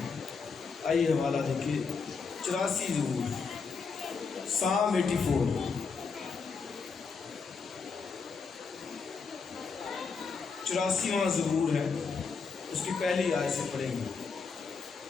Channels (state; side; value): quieter; right; 5.2 dB